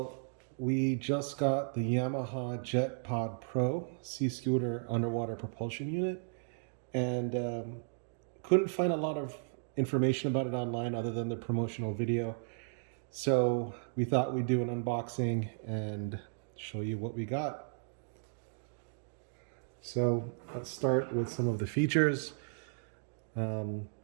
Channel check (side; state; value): left; silent; digital silence